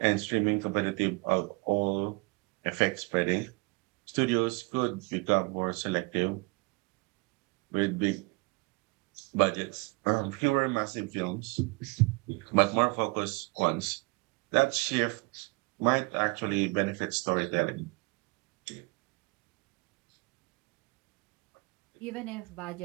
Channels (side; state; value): left; quieter; 28.4 dB